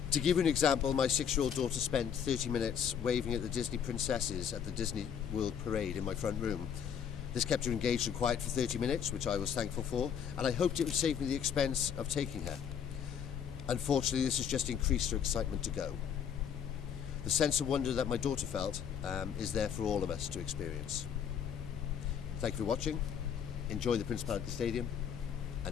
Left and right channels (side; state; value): right; quieter; 8.0 dB